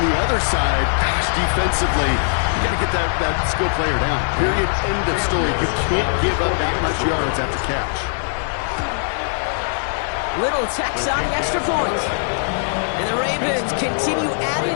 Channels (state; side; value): silent; right; 65 dB below the other